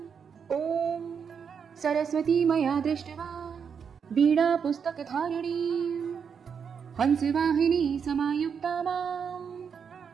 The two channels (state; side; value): quieter; left; 6.7 dB